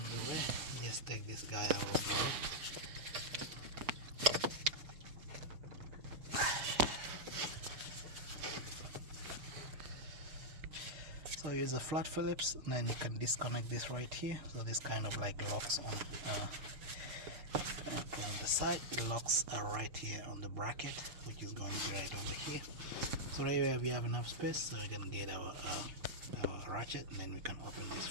the way, you just take this guy out of the way. So use a flat Phillips, and then you can disconnect this right here. So this kind of like locks on, put on the side, it locks right here on the bracket, which is going to be right over here. So right here we have enough space, so we can get our ratchet, and then we can open this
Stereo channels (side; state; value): left; late; 6.6 ms